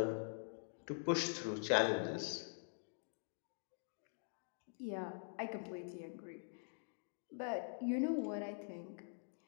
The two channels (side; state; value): right; silent; digital silence